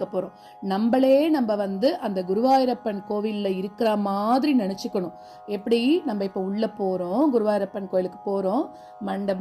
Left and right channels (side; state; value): both; identical; correlation 1.00